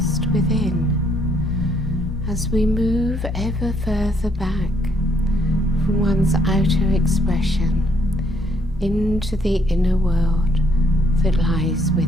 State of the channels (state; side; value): normal; both; correlation 0.69